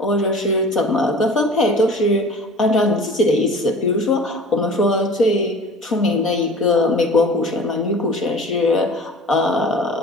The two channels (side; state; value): both; normal; correlation 0.42